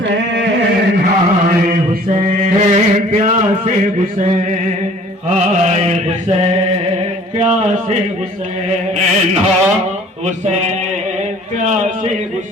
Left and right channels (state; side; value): normal; both; correlation 0.52